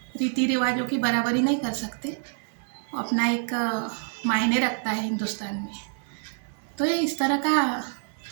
रीति रिवाजों की बराबरी नहीं कर सकते, अपना एक मायने रखता है हिंदुस्तान में। तो ये इस तरह का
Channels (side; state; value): left; silent; digital silence